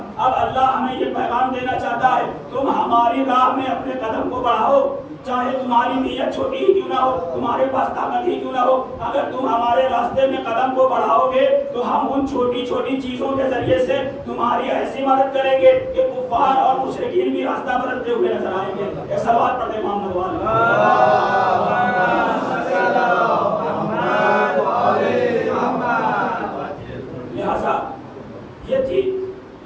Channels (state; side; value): identical; both; correlation 1.00